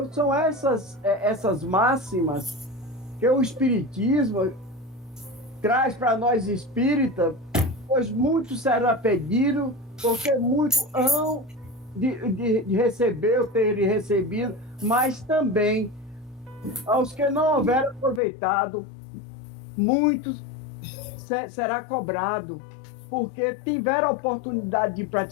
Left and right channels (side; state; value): right; drops out; at 18.2 s